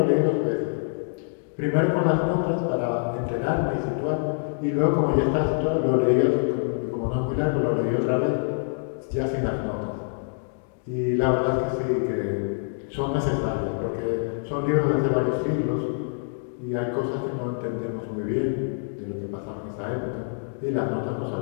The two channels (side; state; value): right; silent; digital silence